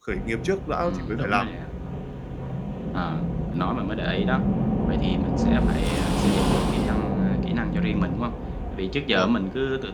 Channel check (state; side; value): identical; both; correlation 1.00